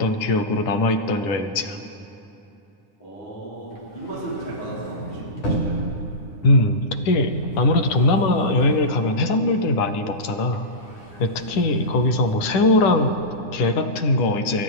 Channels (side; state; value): right; late; 9.9 ms